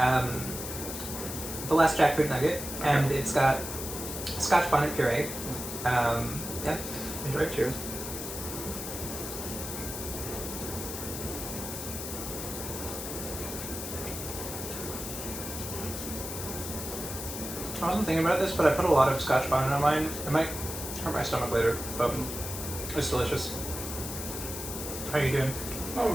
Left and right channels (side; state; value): left; noise; hiss, 7 dB below the sound